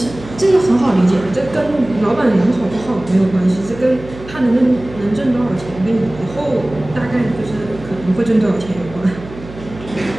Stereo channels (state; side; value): noise; right; hum, 16 dB below the sound